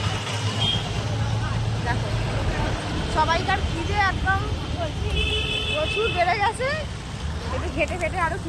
দেখো সবাইকার খিদে একদম প্রচুর বেড়ে গেছে। একটু ঘেটে ঘেটে আরো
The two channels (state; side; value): identical; both; correlation 1.00